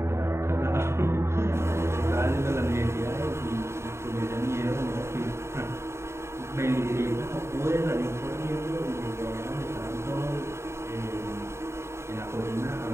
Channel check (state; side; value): late; left; 0.13 ms